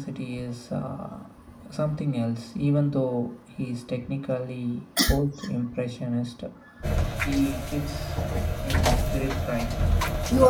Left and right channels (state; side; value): identical; both; correlation 1.00